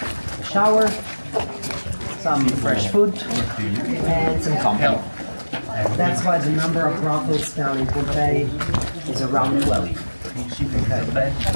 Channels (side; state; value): both; inverted; correlation -1.00